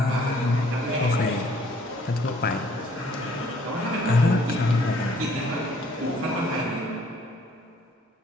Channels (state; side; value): normal; both; correlation 0.61